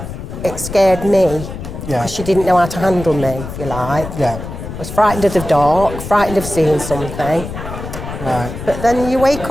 it scared me. Because she didn't know how to handle me, if you like. Yeah. I was frightened of the dark, frightened of seeing something. Right. But then you wake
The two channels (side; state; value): left; noise; rumble, 9 dB below the sound